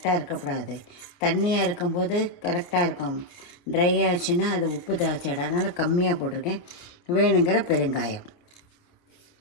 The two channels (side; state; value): right; late; 28 ms